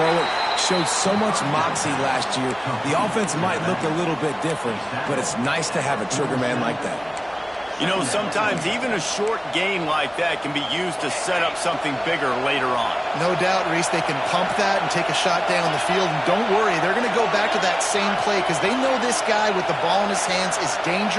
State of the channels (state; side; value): identical; both; correlation 1.00